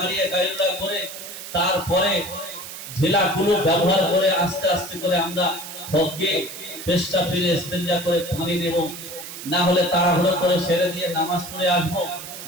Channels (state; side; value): noise; right; hiss, 11 dB below the sound